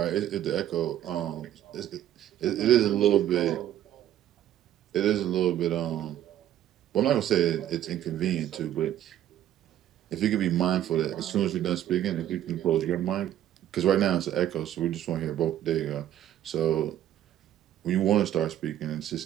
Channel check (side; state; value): left; quieter; 11.8 dB